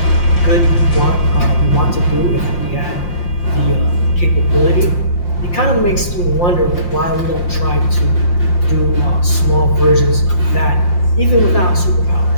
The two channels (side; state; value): right; late; 5.7 ms